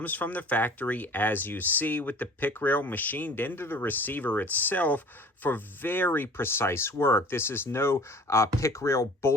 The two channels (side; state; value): both; normal; correlation 0.46